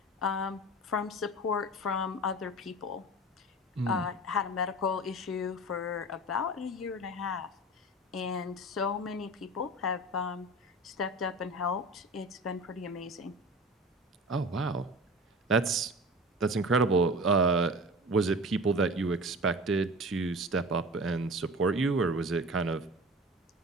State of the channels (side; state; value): both; normal; correlation 0.36